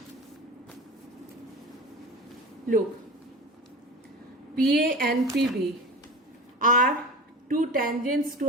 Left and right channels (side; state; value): both; normal; correlation 0.31